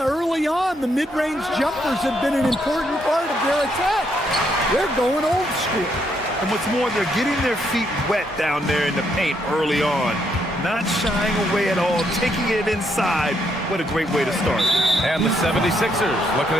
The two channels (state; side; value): normal; both; correlation 0.75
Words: early on, the mid-range jumpers have been an important part of their attack. They're going old school. And what's more, they're getting their feet wet down there in the paint early on. Not shying away at all, taking it inside. What a great way to start. And the 76ers, looking